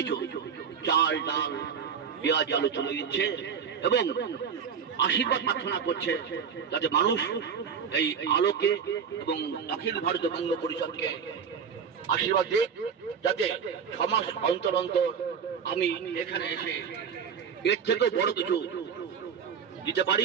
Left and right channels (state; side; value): quieter; left; 6.9 dB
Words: চাল ডাল পেঁয়াজ আলু তুলে দিচ্ছে এবং আশীর্বাদ প্রার্থনা করছে যাতে মানুষ এই আলোকে এবং অখিল ভারতীয় বঙ্গ পরিষদকে আশীর্বাদ দিক, যাতে 6 মাস অন্তর অন্তর আমি এখানে এসে এর থেকেও বড় কিছু দিতে পারি